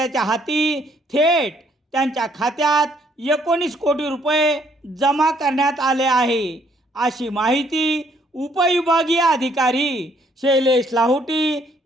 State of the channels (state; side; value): normal; both; correlation 0.67